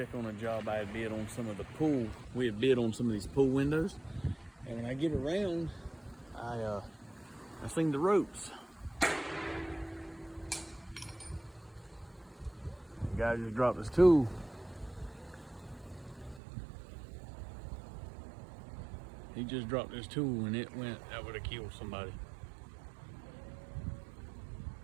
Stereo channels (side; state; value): left; drops out; at 16.4 s